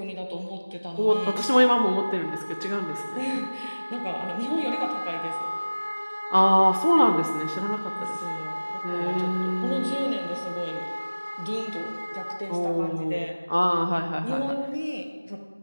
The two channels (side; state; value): both; inverted; correlation -1.00